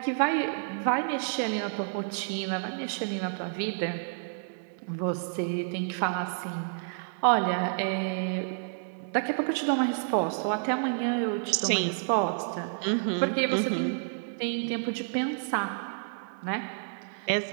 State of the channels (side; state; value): left; silent; digital silence